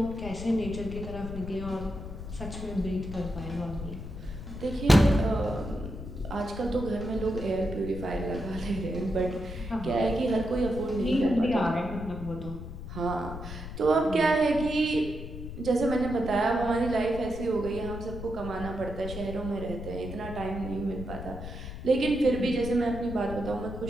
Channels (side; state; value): left; noise; rumble, 9 dB below the sound